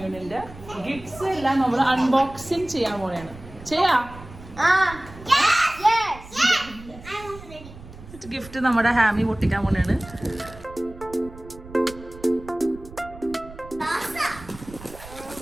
ഗിഫ്റ്റ്സ് എല്ലാം നമ്മൾ അൺബോക്സിംഗ് ചെയ്യാൻ പോലെയാണ്. ഗിഫ്റ്റ് നമ്മുടെ ഹാമി പൊട്ടിക്കാൻ പോലെയാണ്.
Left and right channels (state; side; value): noise; right; rumble, 17 dB below the sound